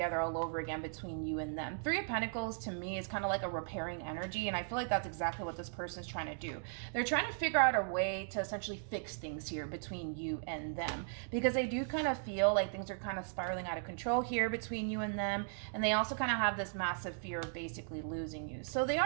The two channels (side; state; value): left; silent; digital silence